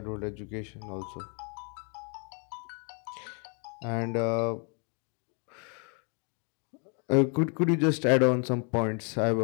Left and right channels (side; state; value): right; quieter; 37.2 dB